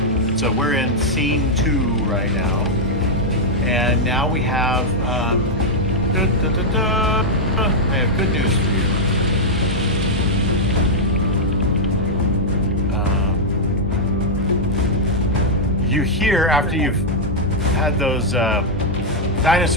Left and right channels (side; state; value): both; normal; correlation -0.05